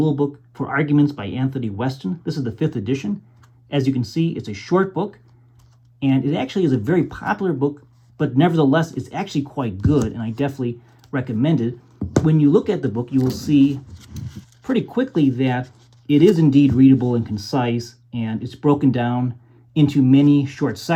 book for arguments by Anthony Weston. This is the 5th edition. As you can see, it's a short book, and it actually is a very popular book, but nevertheless, it's actually quite good, and I definitely recommend it. When you look at the book, you will see pretty quickly that it is indeed readable and concise, and it's broken down into many short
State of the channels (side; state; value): both; identical; correlation 1.00